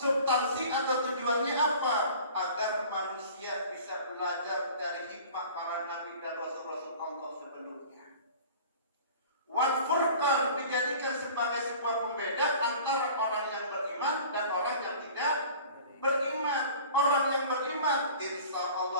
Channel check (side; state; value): both; inverted; correlation -0.43